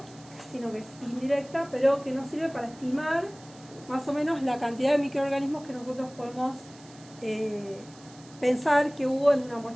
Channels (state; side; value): noise; right; hiss, 23 dB below the sound